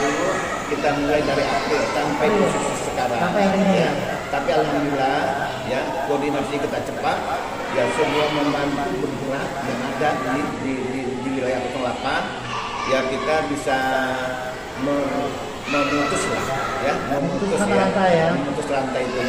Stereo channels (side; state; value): both; identical; correlation 1.00